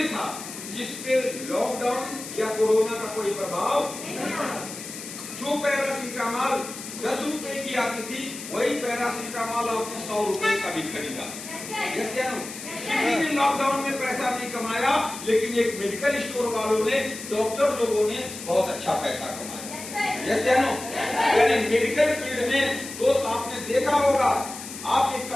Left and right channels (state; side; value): noise; left; hiss, 11 dB below the sound